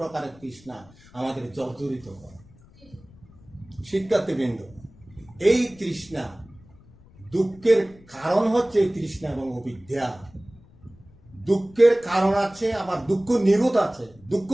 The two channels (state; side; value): noise; left; rumble, 25 dB below the sound